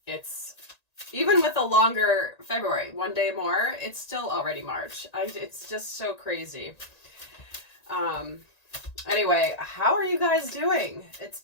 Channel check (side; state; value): right; late; 1.9 ms